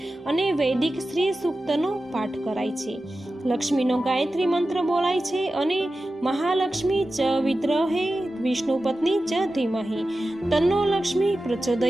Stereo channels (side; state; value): both; normal; correlation 0.94